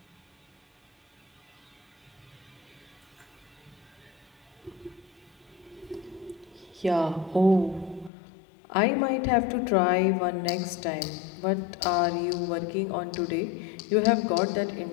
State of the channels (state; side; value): drops out; right; at 8.1 s